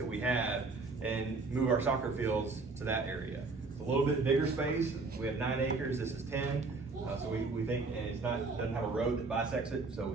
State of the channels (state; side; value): quieter; left; 3.9 dB